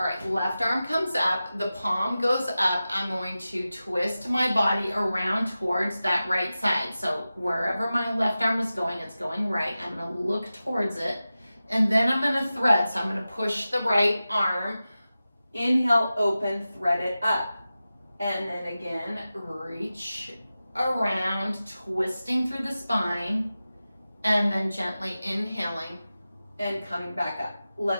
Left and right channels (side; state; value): both; inverted; correlation -0.94